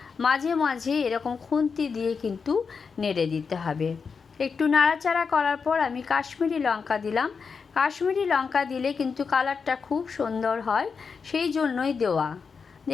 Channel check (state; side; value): quieter; right; 5.5 dB